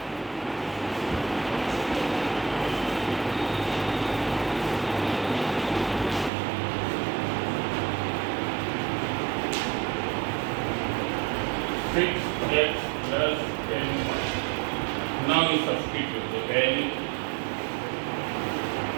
6x plus 10y. Now you substitute the value.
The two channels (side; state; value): left; drops out; at 6.3 s